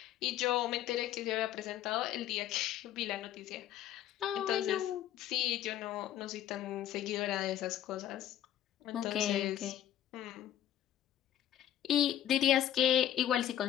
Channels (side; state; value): right; quieter; 11.6 dB